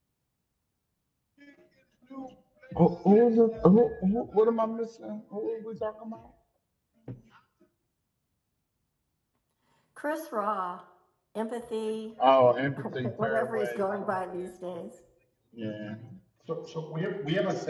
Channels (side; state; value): both; identical; correlation 1.00